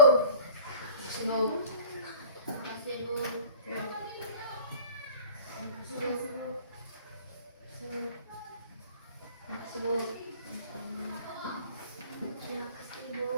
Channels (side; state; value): both; inverted; correlation -0.44